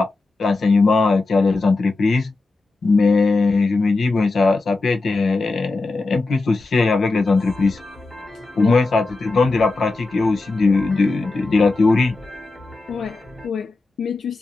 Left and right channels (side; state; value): right; quieter; 3.5 dB